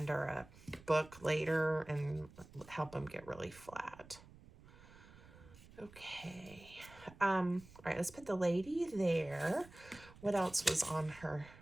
a book later and help them get really flat. Okay. All right, let's put the lady there. What else was on her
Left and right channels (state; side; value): noise; right; rumble, 21 dB below the sound